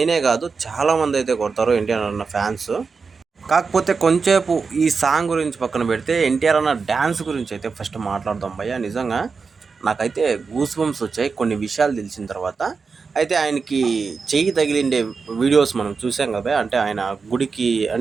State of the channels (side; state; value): left; quieter; 5.0 dB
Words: కాదు చాలామంది అయితే కొడతారు ఎన్టీఆర్ అన్న ఫ్యాన్స్. కాకపోతే కొంచెంసేపు ఈ సాంగ్ గురించి పక్కన పెడితే ఎన్టీఆర్ అన్న డ్యాన్స్ గురించి అయితే ఫస్ట్ మాట్లాడదాం భయ్య. నిజంగా నాకైతే గూస్ బంప్స్ వచ్చాయి కొన్ని విషయాలు తెలిసిన తర్వాత. అయితే ఆయనకి చెయ్యి తగిలిండే వీడియోస్ మనం చూసాం కదా, అంటే ఆయన గుడికి